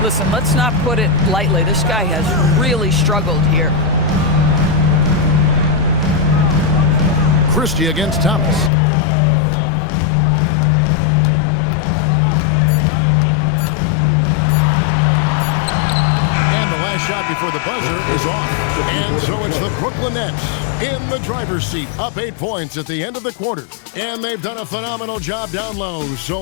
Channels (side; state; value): right; drops out; at 8.7 s